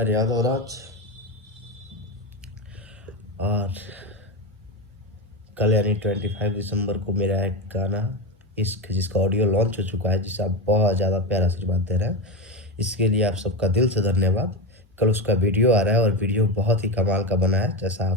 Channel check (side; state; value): both; normal; correlation 0.16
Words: यादव राज। और कल यानी 25 दिसंबर को मेरा एक गाना इश्क, जिसका ऑडियो लॉन्च हो चुका है, जिसे आप बहुत ज़्यादा प्यार आशीर्वाद दे रहे हैं, इसके लिए आप सबका दिल से धन्यवाद। कल उसका वीडियो आ रहा है और वीडियो बहुत ही कमाल का बना है, जैसा